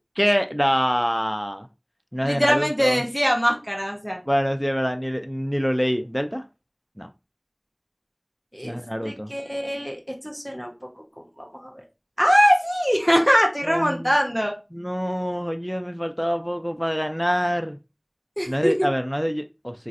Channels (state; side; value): identical; both; correlation 1.00